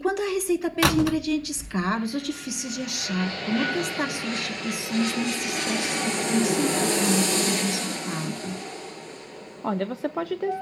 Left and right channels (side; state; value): both; identical; correlation 1.00